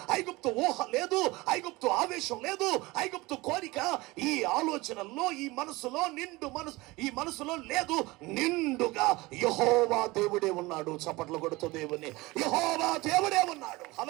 ఐగుప్తు ఊహ లేదు, ఐగుప్తు ఆవేశం లేదు, ఐగుప్తు కోరిక ఈ ఆలోచనల్లో, ఈ మనసులో ఈ మనసులో లేదు. నిండుగా యెహోవా దేవుడే ఉన్నాడు. చప్పట్లు కొడుతూ దేవుని, యెహోవా దేవుడే ఉన్నాడు.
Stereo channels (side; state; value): left; quieter; 21.6 dB